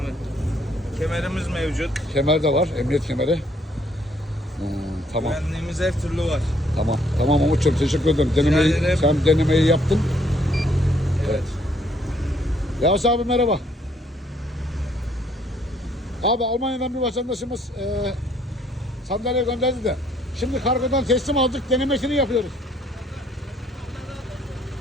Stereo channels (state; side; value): normal; both; correlation 0.66